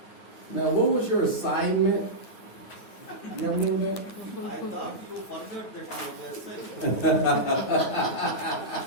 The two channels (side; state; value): right; late; 9.4 ms